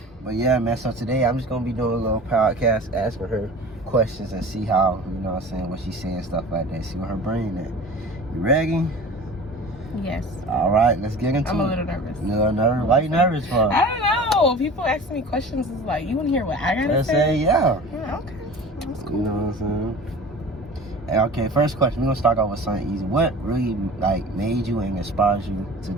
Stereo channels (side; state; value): both; normal; correlation 0.39